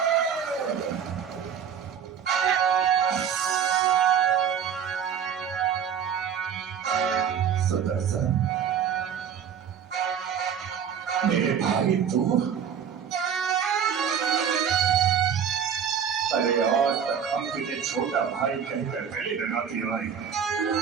सुदर्शन, मेरे भाई तू, अरे आज तक हम तुझे छोटा भाई कहकर गले लगाती आई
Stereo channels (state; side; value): quieter; left; 8.0 dB